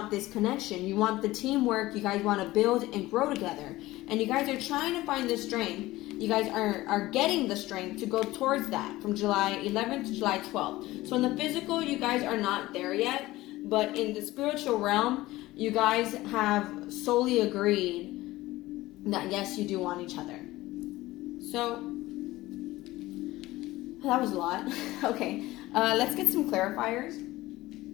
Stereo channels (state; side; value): quieter; right; 17.9 dB